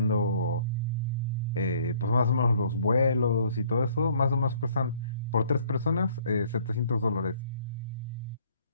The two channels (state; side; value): inverted; both; correlation -0.58